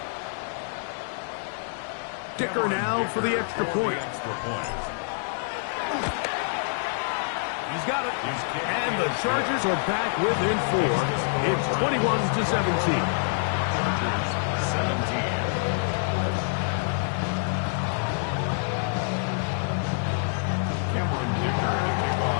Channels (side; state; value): right; silent; digital silence